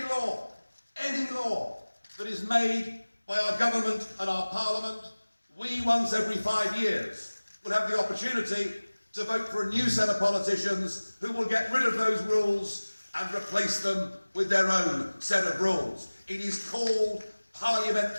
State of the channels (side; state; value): both; inverted; correlation -1.00